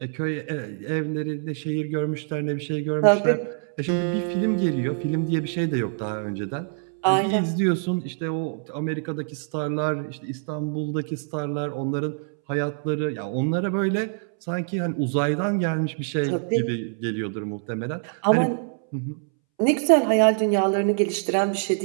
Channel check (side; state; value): left; silent; 62 dB below the other